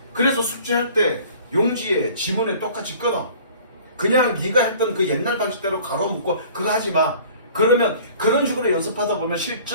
그래서 숙제할 때 용지에 지문에 똑같이 끊어. 그냥 네가 했던 그 옛날 방식대로 가로 묶고 그거 하지 마. 그러면 그런 식으로 연습하다 보면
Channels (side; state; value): both; inverted; correlation -0.48